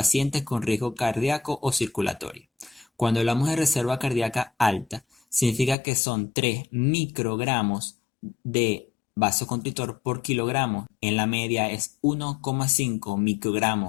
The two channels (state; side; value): drops out; right; at 5.8 s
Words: con riesgo cardíaco o circulatorio. Cuando hablamos de reserva cardíaca alta, significa que son 3 microgramos de vasoconstrictor por kilogramo. En la media es 1,5